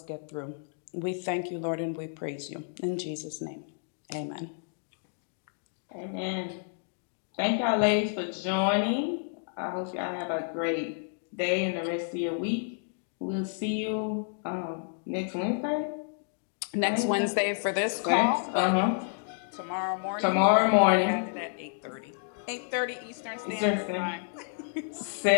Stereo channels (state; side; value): silent; right; digital silence